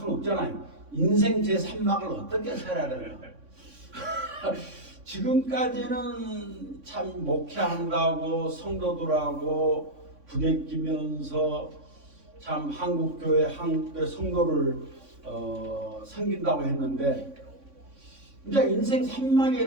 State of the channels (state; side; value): late; left; 3.6 ms